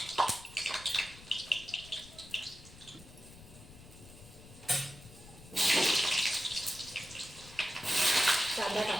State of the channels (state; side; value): noise; left; rumble, 19 dB below the sound